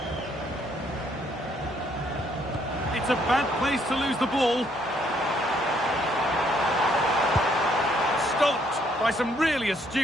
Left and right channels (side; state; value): both; normal; correlation 0.68